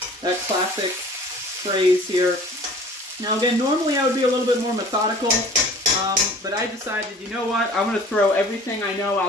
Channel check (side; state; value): both; normal; correlation 0.47